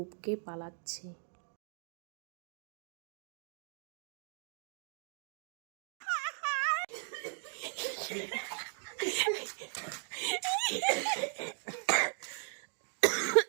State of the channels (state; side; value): silent; left; 53 dB below the other